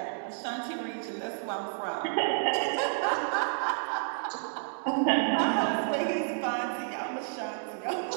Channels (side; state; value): left; silent; digital silence